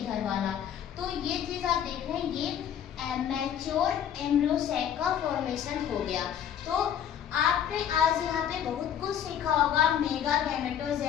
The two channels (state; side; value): quieter; right; 9.4 dB